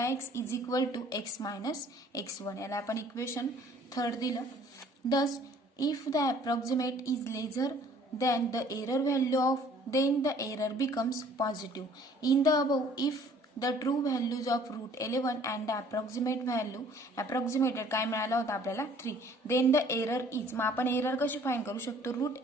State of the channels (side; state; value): both; normal; correlation 0.55